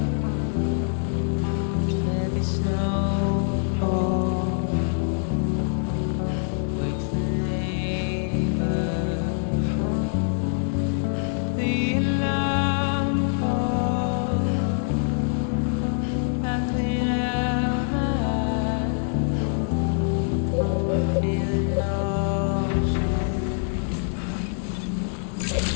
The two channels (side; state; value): right; silent; 62 dB below the other